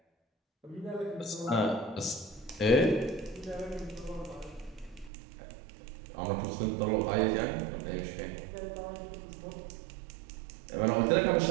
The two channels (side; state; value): left; drops out; at 5.1 s